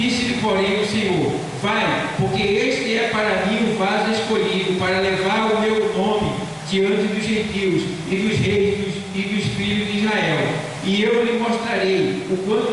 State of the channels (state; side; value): identical; both; correlation 1.00